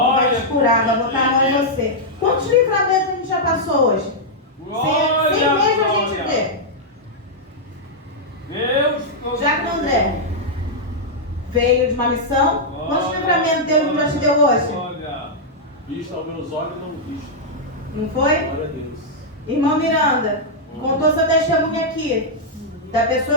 te curar, vai botar a mão em você. Quantos livramentos a gente já passou hoje? Sem mesmo a gente ver. Deus, Jacandré veio de uma missão. Quantos livramentos Deus já te deu hoje? Olha. Visto aos meus olhos, não visto. Não foi? Glória a Deus. Irmão Miranda, contou seu testemunho aqui, da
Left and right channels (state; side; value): normal; both; correlation -0.06